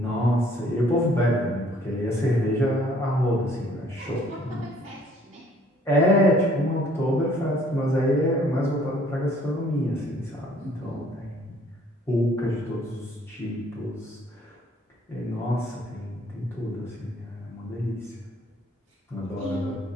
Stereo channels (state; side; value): normal; both; correlation 0.60